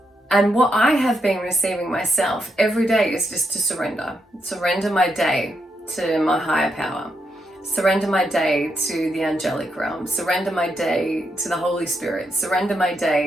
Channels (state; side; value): normal; both; correlation 0.81